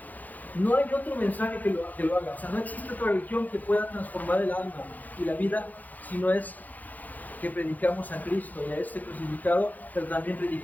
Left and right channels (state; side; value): late; right; 0.081 ms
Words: No hay otro mensaje que lo haga. O sea, no existe otra religión que pueda transformar el alma y la vida, si no es que predicamos a Cristo y a este crucificado, pero también